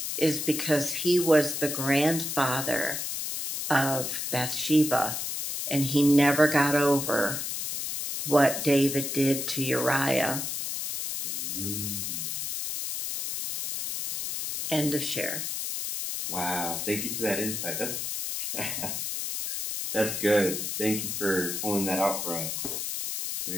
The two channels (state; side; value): noise; left; hiss, 3 dB below the sound